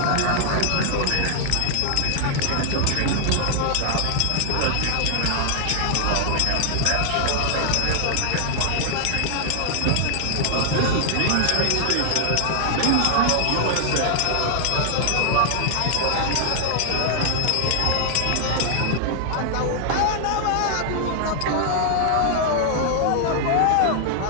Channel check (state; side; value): different; both; correlation 0.00